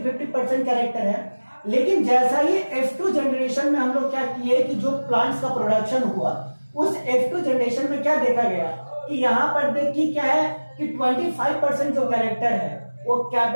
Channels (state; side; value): inverted; both; correlation -1.00